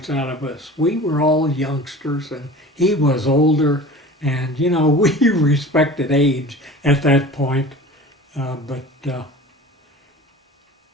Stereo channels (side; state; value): both; normal; correlation 0.39